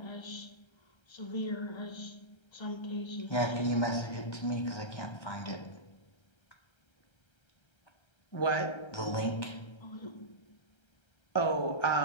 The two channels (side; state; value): right; late; 1.3 ms